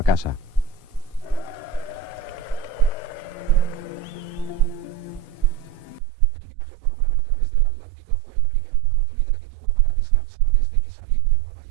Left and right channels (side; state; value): left; drops out; at 6.0 s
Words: casa. El viaje por mar a través del Atlántico fue la primera oportunidad que tuvo para descansar desde que salió de Nueva